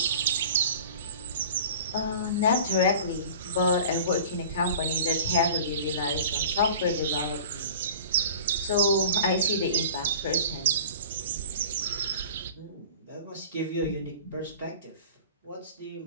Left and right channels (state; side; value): inverted; both; correlation -0.41